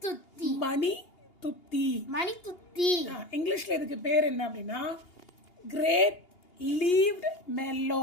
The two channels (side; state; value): right; late; 2.8 ms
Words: துத்தி. மணி துத்தி. மணி துத்தி. இங்கிலீஷ்ல இதுக்கு பேர் என்ன அப்படின்னா grape leaved mellow.